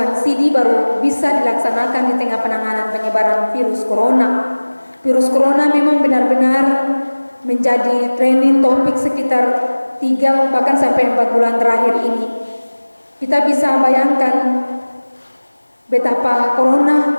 sidi baru bisa dilaksanakan di tengah penanganan penyebaran virus corona. Virus corona memang benar-benar menjadi trending topik sekitar 3 bahkan sampai 4 bulan terakhir ini. Kita bisa bayangkan betapa corona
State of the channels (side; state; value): both; inverted; correlation -1.00